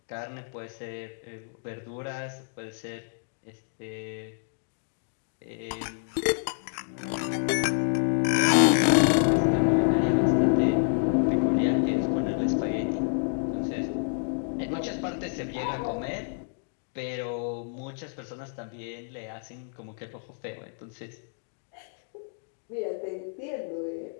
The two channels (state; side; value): silent; right; digital silence